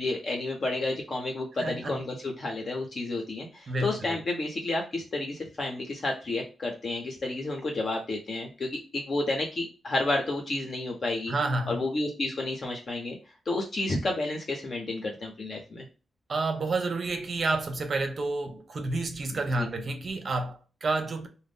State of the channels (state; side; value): normal; both; correlation 0.85